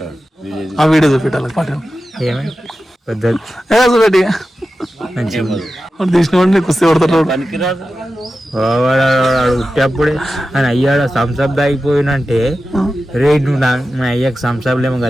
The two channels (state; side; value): normal; both; correlation 0.93